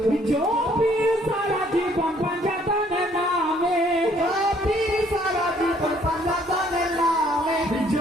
জপি সারা জীবন পাঞ্জাতনের নামে, জপি সারা জীবন পাঞ্জাতনের নামে,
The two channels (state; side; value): normal; both; correlation 0.63